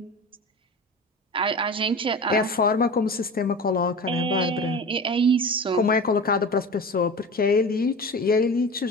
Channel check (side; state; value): both; normal; correlation 0.32